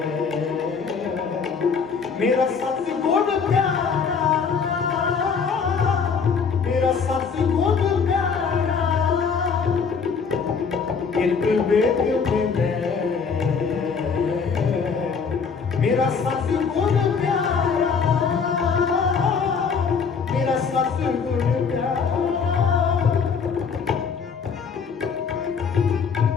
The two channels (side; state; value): right; quieter; 5.7 dB